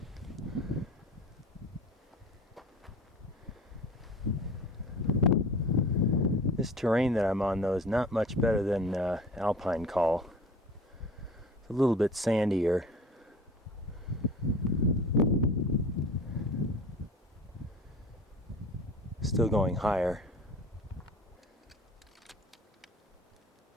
This terrain that I'm on, though, is not much better than Alpine Col. It's a little bit sandier. Still going higher.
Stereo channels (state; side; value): normal; both; correlation 0.40